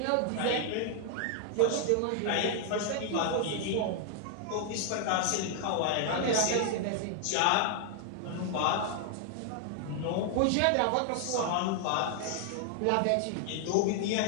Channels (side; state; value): both; different; correlation 0.00